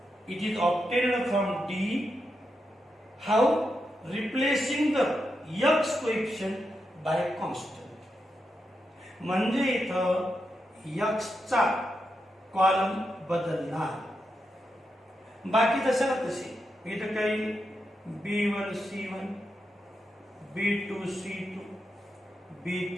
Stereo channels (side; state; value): both; normal; correlation 0.86